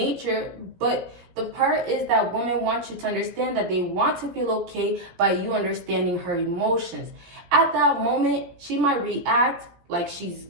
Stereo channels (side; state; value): left; late; 17 ms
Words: But the part is that women want you to understand that they want to feel okay by you understanding her emotions. At that moment, she might react like she's